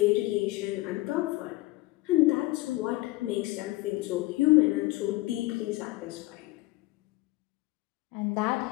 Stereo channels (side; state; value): right; quieter; 19.9 dB